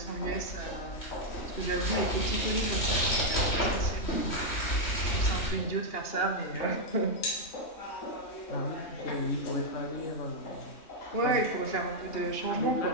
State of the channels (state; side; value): late; right; 2.8 ms